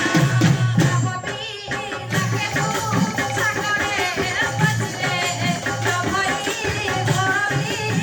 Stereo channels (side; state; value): both; identical; correlation 1.00